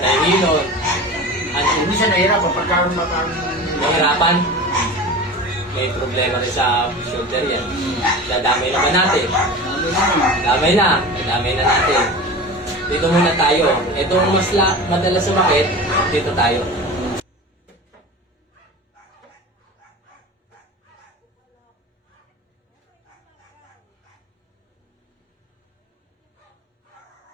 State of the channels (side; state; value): both; normal; correlation 0.33